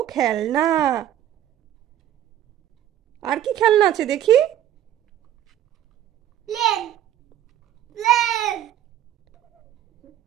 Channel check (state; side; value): quieter; left; 11.5 dB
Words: খেলনা। আর কি খেলনা আছে দেখি? Plane, plane.